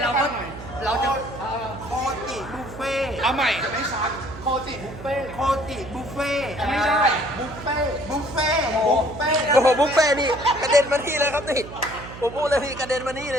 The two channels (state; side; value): noise; right; hum, 13 dB below the sound